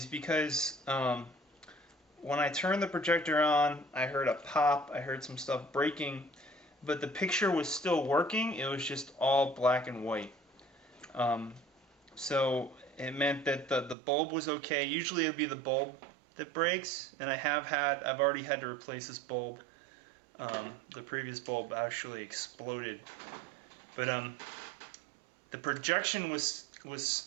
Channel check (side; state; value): left; drops out; at 14.0 s